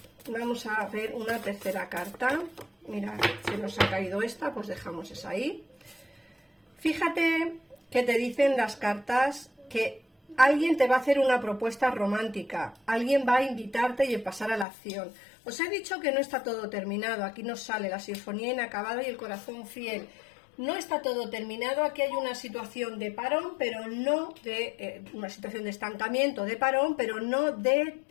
Vamos a ver una tercera carta. Mira, se nos ha caído esta, pues dejamos esa ahí. Fíjate que te dicen las cartas que alguien te va a hacer una propuesta romántica, alguien va a invitarte y a pasar a la acción. Os he dicho que no está todo terminado, aquí nos sale la sinfonía inacabada y el corazón fiel. No está todo terminado, aquí hay una situación de parón, pero no de una situación de estancamiento, de parón, pero no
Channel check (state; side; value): drops out; right; at 14.7 s